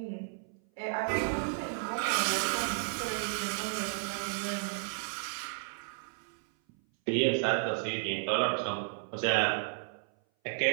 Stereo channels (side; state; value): left; silent; 56 dB below the other